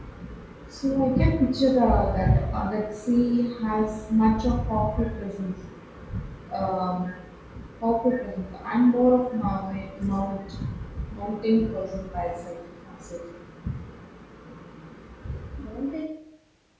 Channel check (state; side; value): identical; both; correlation 1.00